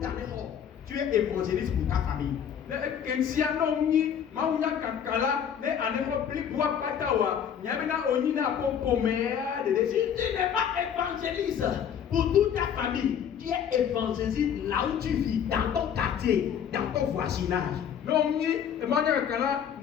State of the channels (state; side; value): quieter; right; 8.5 dB